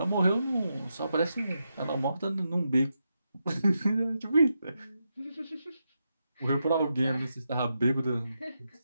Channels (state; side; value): inverted; both; correlation -0.86